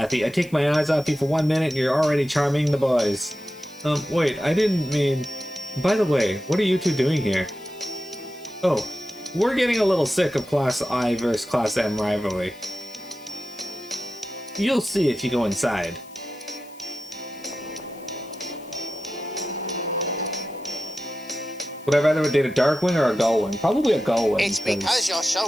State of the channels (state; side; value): noise; left; hiss, 24 dB below the sound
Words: I take my eyes off you for 1 minute and you're already charming the boys. Wait, I didn't mean... By the way, what are you two doing here? Oh, we're getting a little sick of Class I versus Class M rivalry. You'll see if you go inside. Would I rather date a Darkwing or a Gullwing? Probably a Gullwing. It's because you're